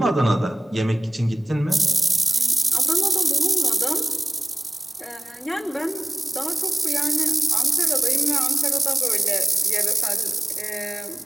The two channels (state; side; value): normal; both; correlation 0.95